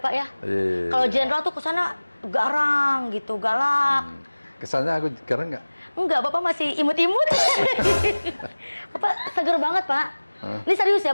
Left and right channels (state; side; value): inverted; both; correlation -1.00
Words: ya. Kalau jenderal tuh kesana garang gitu, galak. Kesannya aku garang nggak? Enggak, Bapak masih imut-imut. Bapak seger banget Pak. Ini serius ya